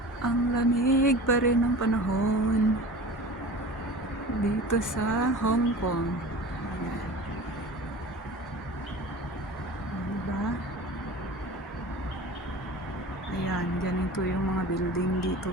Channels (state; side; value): normal; both; correlation 0.37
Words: Ang lamig pa rin ng panahon dito sa Hong Kong. Ayan. Diba? Ayan, ganito yung mga building dito